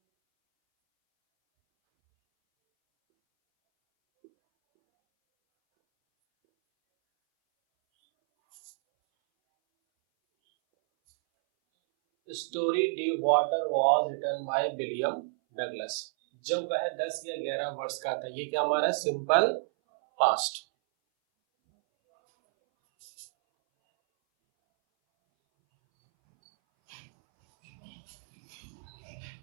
Story the water was written by William Douglas. जब वह 10 या 11 वर्ष का था। ये क्या हमारा सिंपल पास्ट।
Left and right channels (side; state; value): left; silent; 58 dB below the other